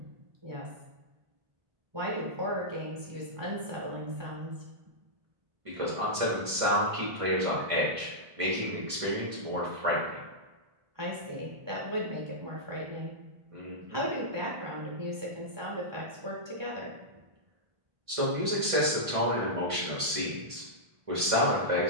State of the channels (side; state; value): left; late; 1.5 ms